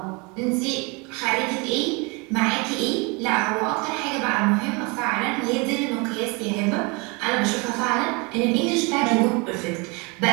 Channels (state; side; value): quieter; left; 29.1 dB